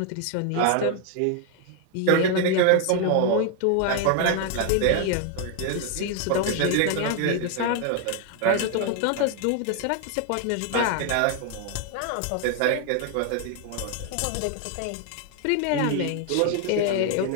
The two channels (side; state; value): both; different; correlation 0.01